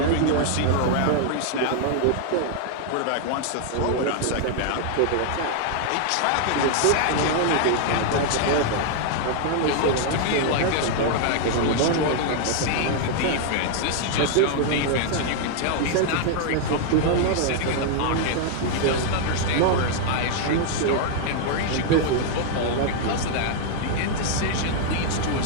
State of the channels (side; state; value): both; different; correlation 0.00